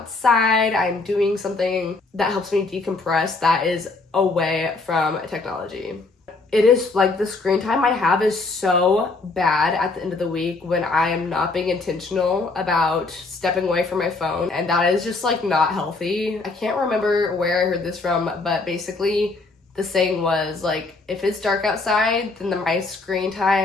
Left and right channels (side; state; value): right; quieter; 3.6 dB